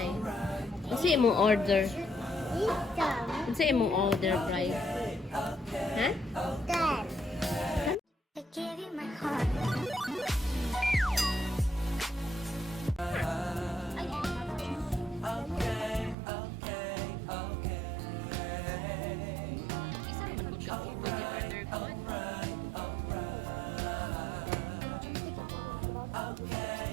Unsa imo order? Unsa imo order, Bri? Ha? I gave you my heart. Isa naman gud ka o pwede order ko.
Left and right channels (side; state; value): left; drops out; at 16.2 s